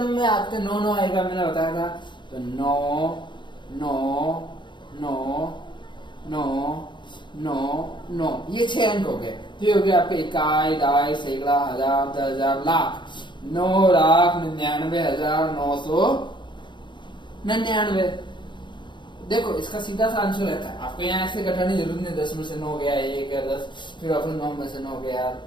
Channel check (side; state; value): right; late; 0.23 ms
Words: में आपके 9 आएगा, मैंने बताया था। तो 9 9 9 9 9 9 ये 6 अंक हो गए। तो हो गया आपके इकाई, दहाई, सैकड़ा, हजार, 10,000, लाख। 9,99,999। देखो इसका सीधा सा आंसर रहता है, आपको यहाँ ऐसे घटाने की जरूरत नहीं। 10 में से 9 गया, 1 है 10, फिर आपको 9 में से 9 गया।